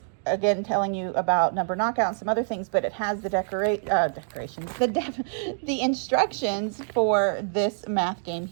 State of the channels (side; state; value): left; silent; digital silence